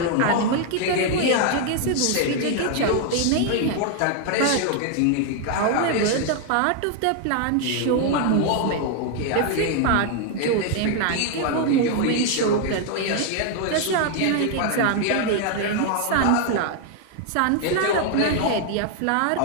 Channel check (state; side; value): different; both; correlation 0.00